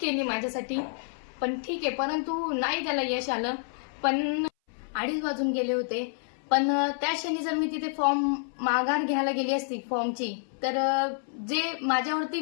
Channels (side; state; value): right; silent; 59 dB below the other